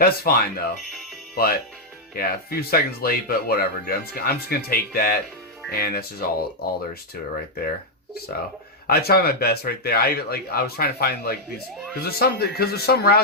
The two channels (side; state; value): both; normal; correlation -0.02